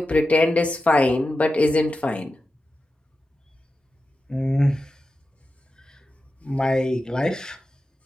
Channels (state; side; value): normal; both; correlation 0.92